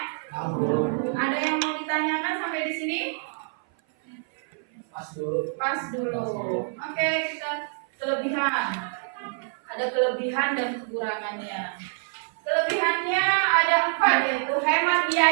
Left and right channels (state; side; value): silent; left; 56 dB below the other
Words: Ada yang mau ditanyakan sampai di sini? Pas dulu. Oke, kita kelebihan. Ada kelebihan dan kekurangannya. Kelebihannya ada 4, yaitu hemat